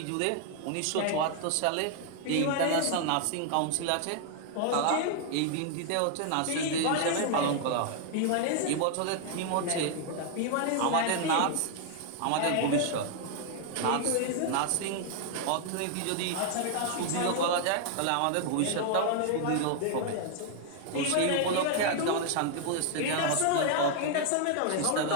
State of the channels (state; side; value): different; both; correlation 0.00